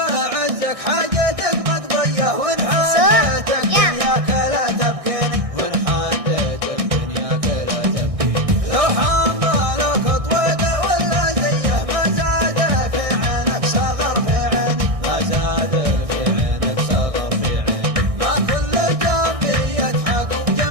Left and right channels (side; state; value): left; late; 1.6 ms